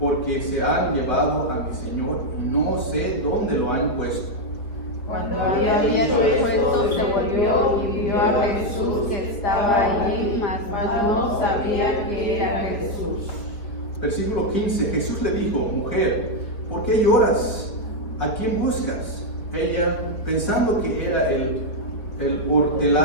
se han llevado a mi Señor y no sé dónde lo han puesto. Cuando había dicho esto, se volvió y vio a Jesús que estaba allí, mas no sabía que era Jesús. Versículo 15: Jesús le dijo: mujer, ¿por qué lloras? ¿A quién buscas? Ella, pensando que era el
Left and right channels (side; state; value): right; late; 4.4 ms